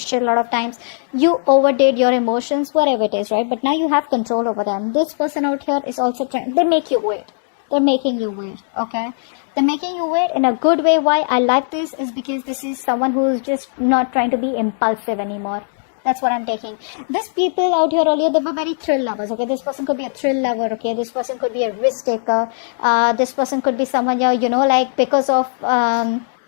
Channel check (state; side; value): silent; right; digital silence